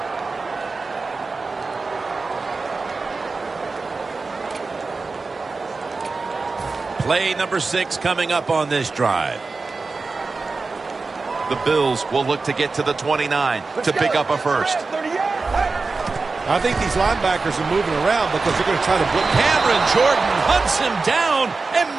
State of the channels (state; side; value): quieter; left; 4.0 dB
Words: Play number 6 coming up on this drive. The Bills will look to get to the 29 to pick up a first. I think these linebackers are moving around because they're going to try to blitz. Cameron Jordan hunts him down and